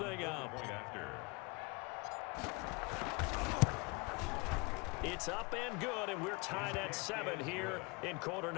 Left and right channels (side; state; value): right; quieter; 28.5 dB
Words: up. It's up and good, and we're tied at 7 here in quarter